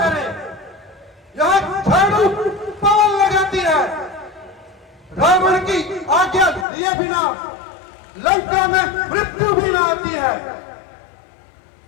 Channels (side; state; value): right; drops out; at 6.7 s